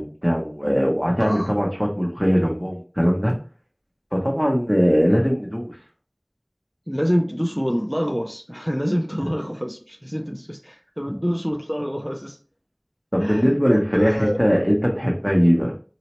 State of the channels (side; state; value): both; identical; correlation 1.00